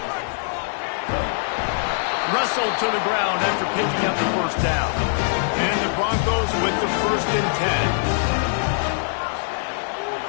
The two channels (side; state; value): right; silent; digital silence